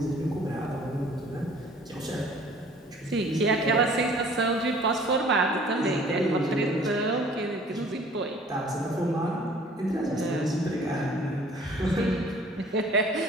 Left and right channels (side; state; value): both; normal; correlation 0.52